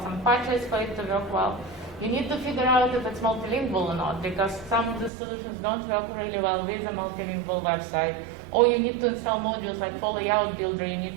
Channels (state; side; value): drops out; left; at 5.1 s